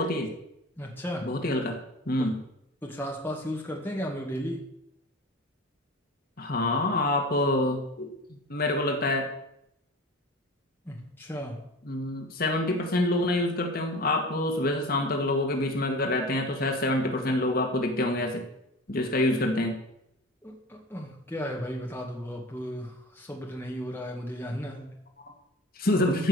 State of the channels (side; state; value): both; normal; correlation 0.35